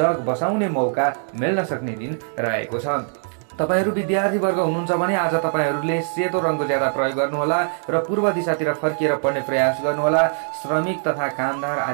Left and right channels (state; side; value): silent; left; 63 dB below the other